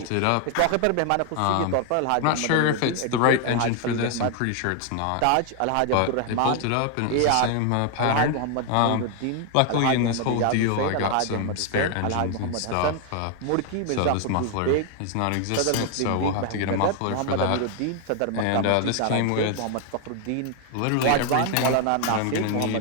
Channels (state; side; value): different; both; correlation 0.00